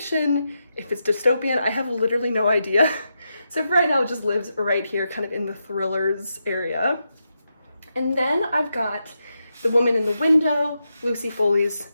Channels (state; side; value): inverted; both; correlation -0.86